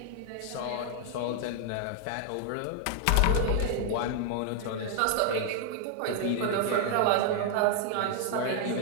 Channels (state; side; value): different; both; correlation 0.00